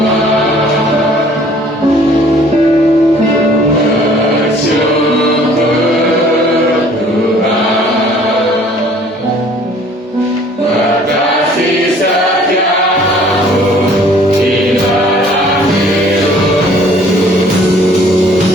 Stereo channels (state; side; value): normal; both; correlation 0.55